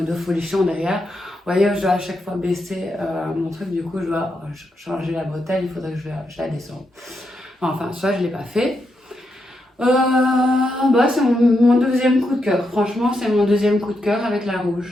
folichon derrière. Vous voyez, je dois à chaque fois baisser mon truc. Du coup, je dois changer la bretelle. Il faudrait que je la descende. Enfin, soit je ne l'ai pas fait. C'est mon deuxième coup de cœur. Franchement, c'est mon deuxième coup de cœur avec la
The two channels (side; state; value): both; normal; correlation 0.83